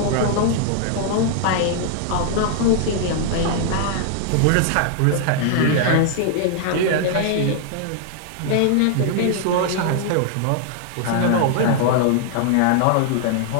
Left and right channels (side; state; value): both; different; correlation -0.01